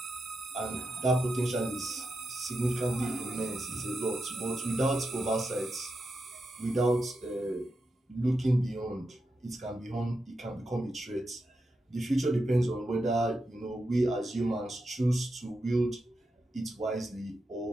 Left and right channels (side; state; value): both; normal; correlation 0.87